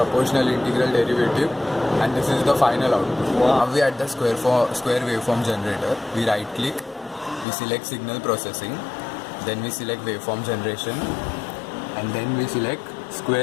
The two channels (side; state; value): right; drops out; at 7.5 s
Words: integral, derivative, and this is the final output. Now we add the square waveform generator. We right click, we select signal processing, then we select waveform generation, and then we select